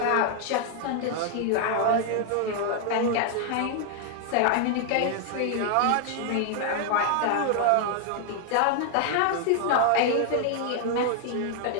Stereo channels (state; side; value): different; both; correlation 0.00